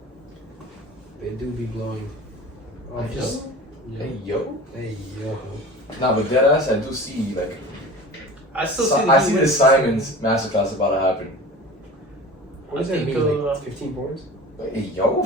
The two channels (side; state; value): both; normal; correlation 0.37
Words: They do be blowing. Oh, Hey, just. Hey, yo. Hey, yo. Nah, but deadass, I do see, like, I still see. I see the Simons masterclass about to happen. What does I that think, mean? Like 15 points? Like, hey, yo.